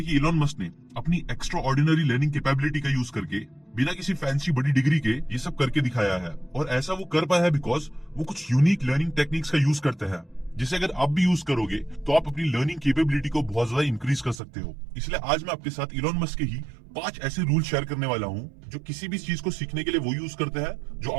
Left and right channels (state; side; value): drops out; left; at 14.4 s